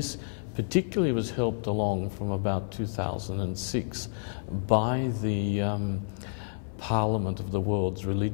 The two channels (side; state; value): right; silent; 58 dB below the other